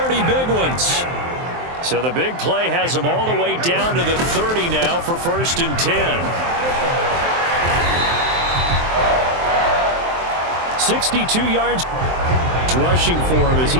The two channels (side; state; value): left; late; 23 ms